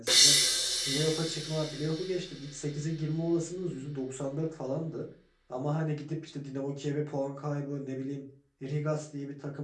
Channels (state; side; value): identical; both; correlation 1.00